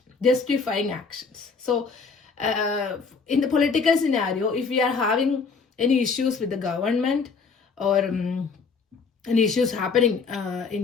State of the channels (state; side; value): quieter; right; 5.0 dB